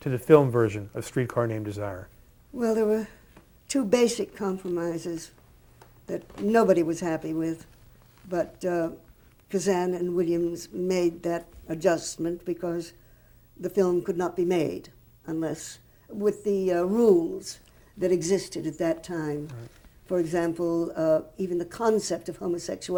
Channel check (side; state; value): both; identical; correlation 1.00